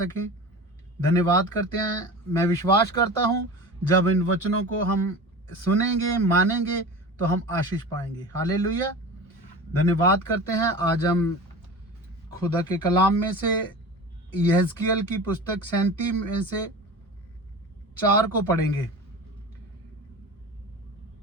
धन्यवाद करते हैं। मैं विश्वास करता हूँ जब इन वचनों को हम सुनेंगे, मानेंगे तो हम आशीष पाएंगे। हालेलुया। धन्यवाद करते हैं। आज हम खुदा के कलाम में से यहेजकेल की पुस्तक 37 में से 4 को पढ़ेंगे।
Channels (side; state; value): both; normal; correlation 0.33